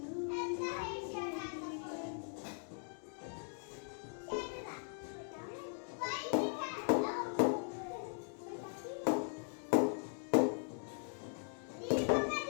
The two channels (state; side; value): silent; right; 51 dB below the other